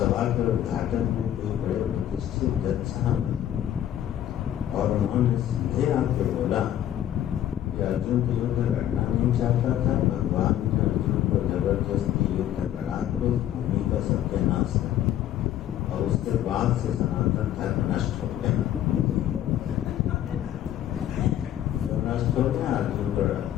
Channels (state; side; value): quieter; right; 11.6 dB